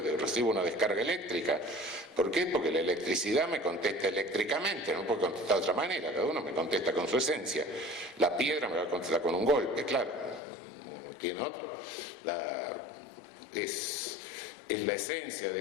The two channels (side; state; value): right; drops out; at 10.4 s